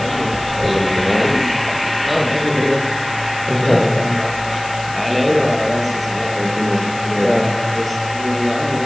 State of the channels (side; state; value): left; noise; hiss, 16 dB below the sound